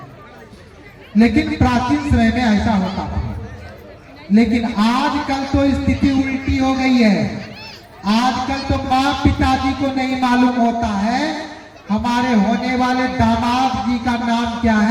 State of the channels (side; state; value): both; identical; correlation 1.00